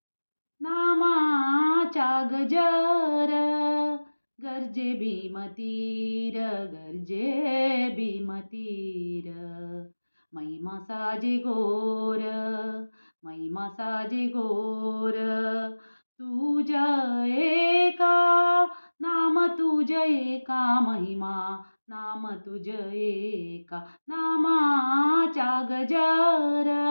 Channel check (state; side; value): inverted; both; correlation -1.00